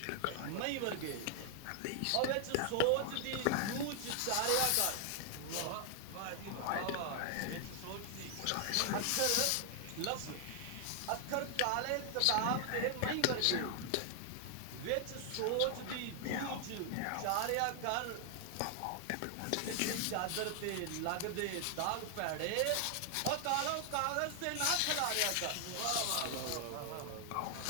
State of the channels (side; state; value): both; different; correlation 0.00